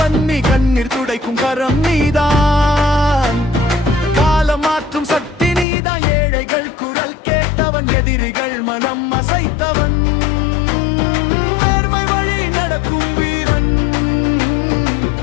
நீ. கண்ணீர் துடைக்கும் கரம் நீதான், காலம் மாற்றும் சக்தி நீதான். ஏழைகள் குரல் கேட்டவன், எதிரிகள் மனம் அசைத்தவன். நேர்மை வழி நடக்கும் வீரன்,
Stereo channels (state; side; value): drops out; right; at 5.7 s